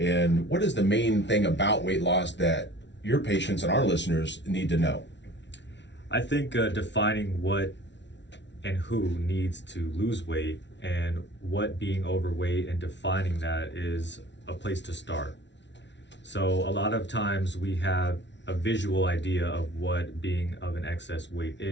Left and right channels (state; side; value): late; right; 0.51 ms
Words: what is the main thing about weight loss that your patients and our listeners need to know? I think defining what and who needs to lose weight and what being overweight and defining that is a place to start. So a lot of times we have a visual idea of what being of an excess weight